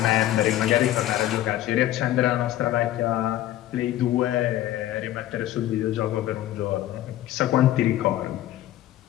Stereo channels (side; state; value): right; quieter; 13.7 dB